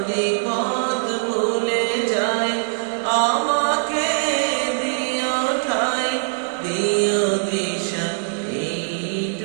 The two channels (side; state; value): left; silent; digital silence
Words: পথ ভুলে যাই আমাকে দিও ঠাই, দিও দিশা